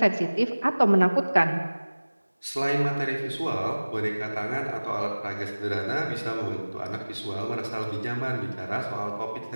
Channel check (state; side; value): inverted; both; correlation -1.00